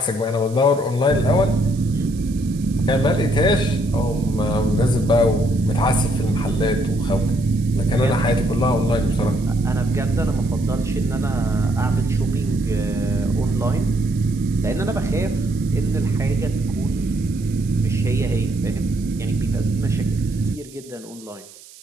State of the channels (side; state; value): right; noise; hiss, 21 dB below the sound